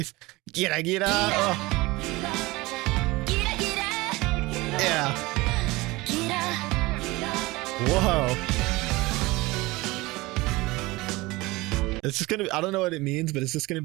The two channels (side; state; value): left; quieter; 21.5 dB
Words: Gira Gira. Oh. Yeah. Whoa. It's just gonna. I don't know what it means, but it's just gonna